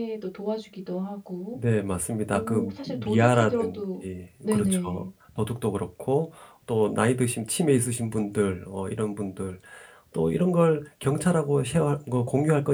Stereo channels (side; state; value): both; identical; correlation 1.00